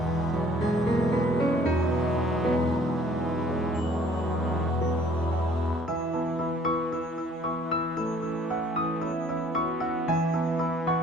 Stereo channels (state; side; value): normal; both; correlation 0.57